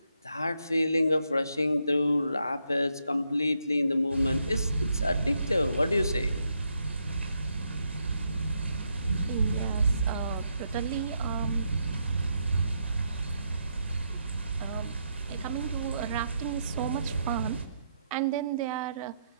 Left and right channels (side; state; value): both; inverted; correlation -0.79